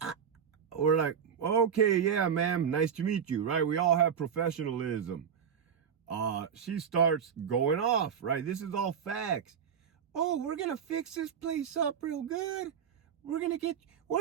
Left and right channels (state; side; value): quieter; left; 7.6 dB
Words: We're like, okay, yeah, ma'am, nice to meet you, right? We all have professionalism. She starts going off, right? This is all facts. Oh, we're going to fix this place up real good. We're gonna